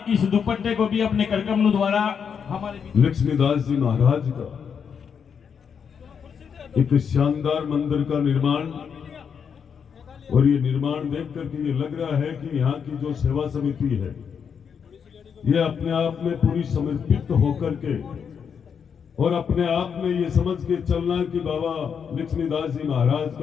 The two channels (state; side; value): quieter; right; 7.0 dB